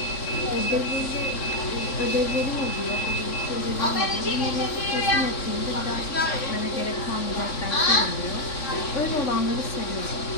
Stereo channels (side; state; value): right; late; 3.6 ms